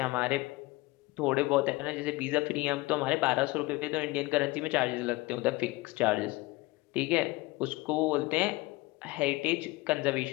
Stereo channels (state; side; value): quieter; right; 21.5 dB